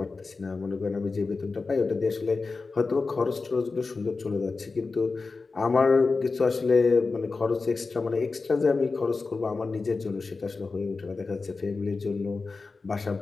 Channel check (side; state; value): right; quieter; 4.1 dB